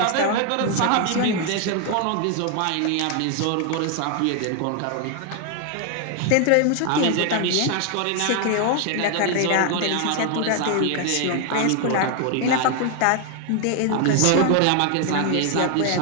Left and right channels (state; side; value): different; both; correlation 0.00